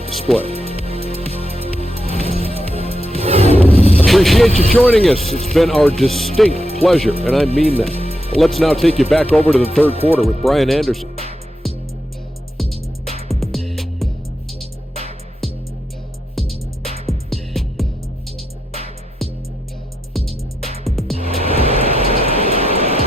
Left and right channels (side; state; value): both; normal; correlation 0.84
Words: display. Appreciate you joining us. It's been our distinct pleasure, and I mean that. Let's now take you back over to the third quarter with Brian Anderson.